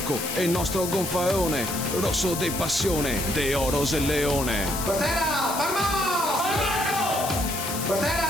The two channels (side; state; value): left; noise; hiss, 6 dB below the sound